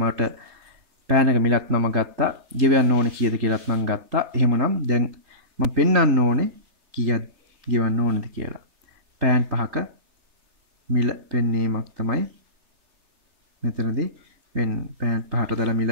මට පෑනක මිලත් මම ගත්තා. ගෙවන්න ඕනේ කීයද කියලාත් මම ගත්තා. එහෙමනම් දැන් මම පෙන්වන්න ඕනේ කීයක් ගෙවන්න ඕනේද කියලා. පෑන් 5ක මිල පෙන්වීමක් තමයි මෙතනදී වෙන්නේ. පෑන් 5ට දාලා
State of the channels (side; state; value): left; late; 3.8 ms